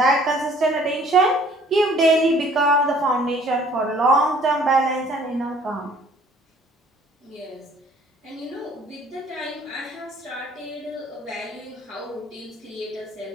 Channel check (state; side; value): normal; both; correlation 0.56